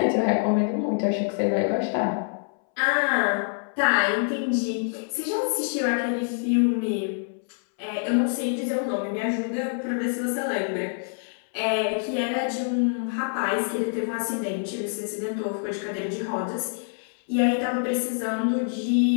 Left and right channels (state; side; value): silent; right; 61 dB below the other